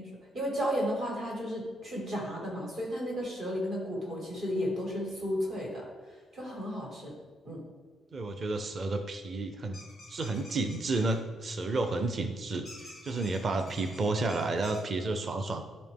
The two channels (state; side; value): normal; both; correlation 0.77